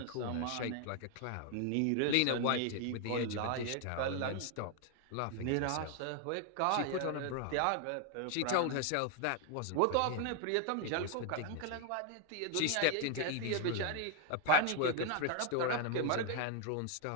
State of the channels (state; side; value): different; both; correlation 0.00